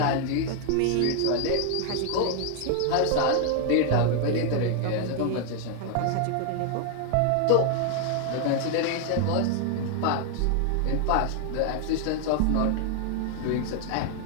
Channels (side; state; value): both; different; correlation 0.00